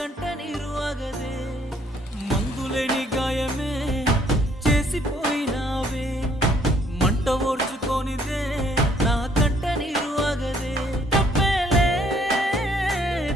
నీరు ఆగదే. మందులేని గాయమే చేసిపోయినావే, మంట ఓర్చుకొనిదే నా కంట నీరు ఆగదే. తప్పేలే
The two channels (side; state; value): both; normal; correlation 0.64